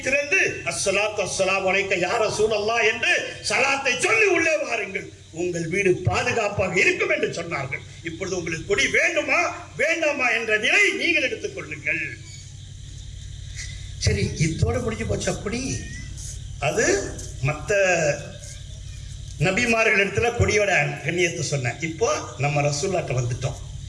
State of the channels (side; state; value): both; identical; correlation 1.00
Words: திறந்து அஸ்ஸலாத்து வஸ்ஸலாமு அலைக்க யா ரசூலல்லாஹ் என்று சலாத்தை சொல்லி உள்ளே வாருங்கள். உங்கள் வீடு பாதுகாப்பாக இருக்கும் என்று சொன்னார்கள். இப்பொழுது உங்களுக்கு கொடி வேண்டுமா வேண்டாமா என்ற நிலை நீங்கள் எடுத்துக் கொள்ளுங்கள். சரி, இதோட முடிஞ்சு போச்சு. அப்படி அது மற்ற நபிமார்கள் இடத்துல கொடியோட கண்ணியத்தை சொன்னேன். இப்போ நம்ம ரசூலுல்லாஹ்ட்ட வந்துட்டோம்.